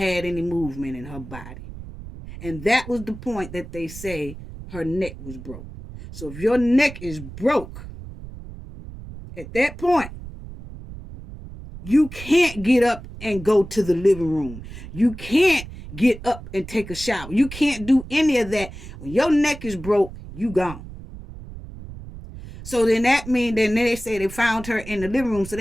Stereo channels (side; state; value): right; noise; rumble, 13 dB below the sound